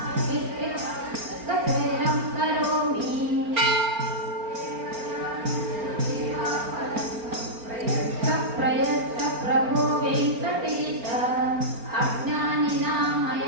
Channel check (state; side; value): late; left; 4.4 ms